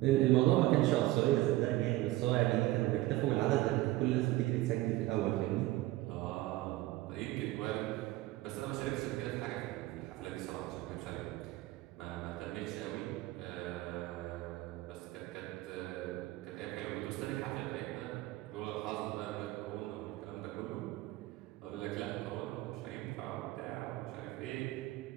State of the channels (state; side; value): quieter; left; 17.7 dB